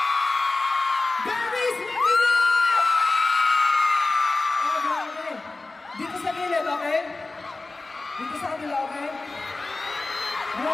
Babies, mag-ingat! Oh, grabe. Dito sa gilid, okay? Dito sa kabila, okay?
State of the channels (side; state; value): right; quieter; 3.4 dB